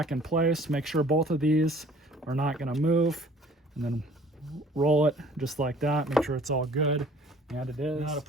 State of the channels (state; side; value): normal; both; correlation 0.53